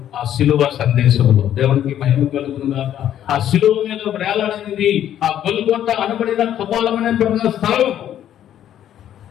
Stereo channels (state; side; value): quieter; right; 10.9 dB